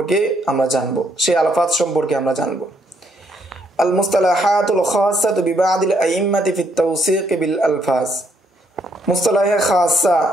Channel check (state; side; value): normal; both; correlation 0.72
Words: আমরা জানব, সেই আলফাজ সম্পর্কে আমরা জানব। আল মুস্তালাহাতুল খাসাতু বিবাদিল আইম্মাতি ফিত তাওসিক বিল আলফাজ। মুস্তালাহে খাসা